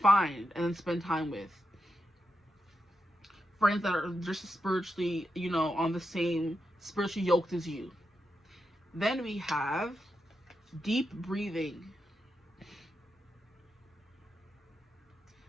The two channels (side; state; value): both; normal; correlation 0.86